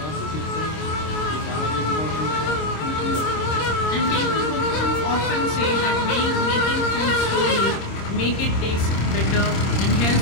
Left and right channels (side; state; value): right; late; 26 ms